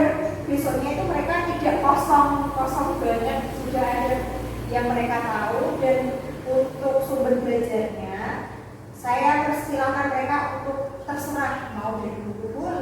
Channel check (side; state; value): both; identical; correlation 1.00